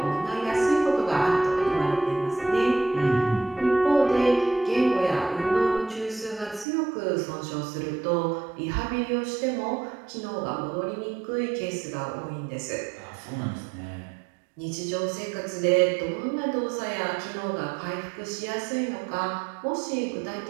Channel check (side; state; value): left; drops out; at 6.7 s